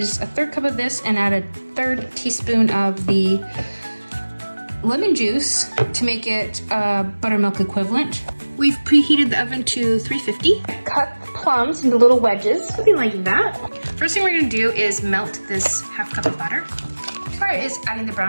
1/3 cup of this and add 1/3 teaspoon of the lemon juice to make it buttermilk equivalent. We've preheated the oven to 350. Cut plums into little wedges, something like that. First thing we're gonna do is melt this 1/2 cup of butter. Next part is adding the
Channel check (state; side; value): inverted; both; correlation -1.00